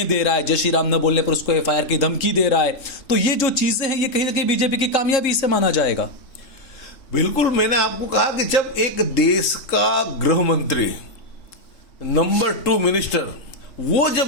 दे रहा है, जय श्री राम न बोलने पर उसको FIR की धमकी दे रहा है। तो ये जो चीजें हैं ये कहीं ना कहीं बीजेपी की कामयाबी से माना जाएगा। बिल्कुल, मैंने आपको कहा कि जब एक देश का गृह मंत्री नंबर 2 मिनिस्टर वो जब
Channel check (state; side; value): late; right; 3.7 ms